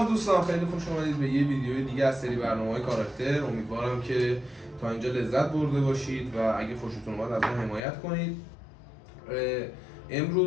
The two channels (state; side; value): drops out; right; at 7.8 s